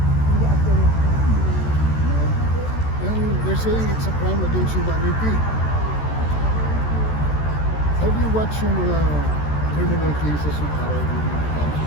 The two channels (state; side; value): late; right; 14 ms